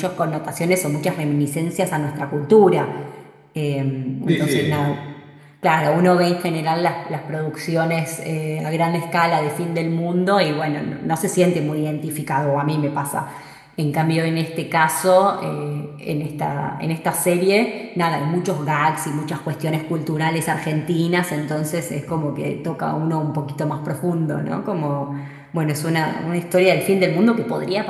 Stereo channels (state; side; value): identical; both; correlation 1.00